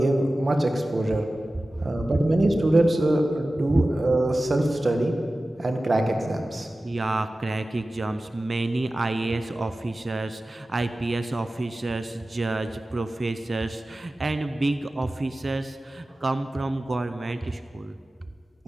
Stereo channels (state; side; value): normal; both; correlation 0.96